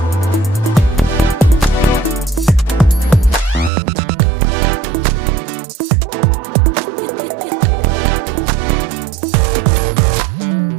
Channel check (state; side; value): drops out; left; at 3.7 s